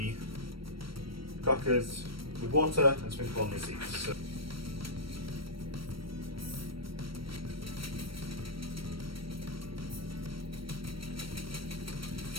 crackers with water and sprinkle on the seeds. So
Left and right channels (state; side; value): late; left; 0.75 ms